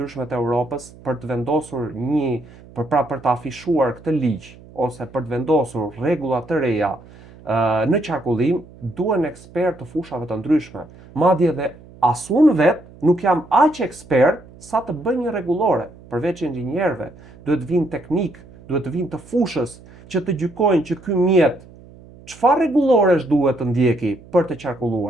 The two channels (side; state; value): right; noise; hum, 22 dB below the sound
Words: të Europës, për të vendosur për të afishuar këtë ligj ose për të vendosur rregulla të reja në qarkullim, duhen ekspertë të fushave të ndryshme. Madje edhe as unë vetë nuk jam aq ekspert sa të bëj një rregullore, përveç inxhinierëve. Duhet vinë teknik, duhet vinë të fushës që të gjykojnë që ky mjet çfarë rregulloresh duhet të ndjeki për të